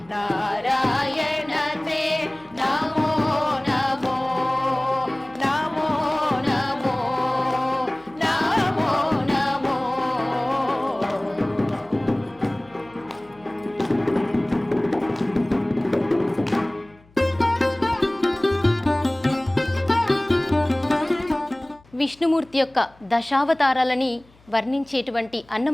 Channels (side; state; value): left; noise; hum, 29 dB below the sound